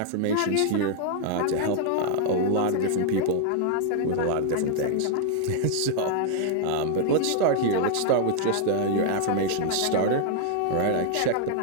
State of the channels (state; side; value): different; both; correlation -0.01